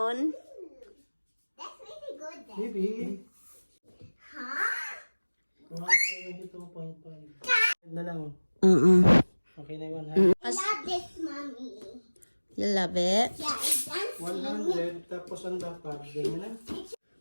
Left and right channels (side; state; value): both; inverted; correlation -1.00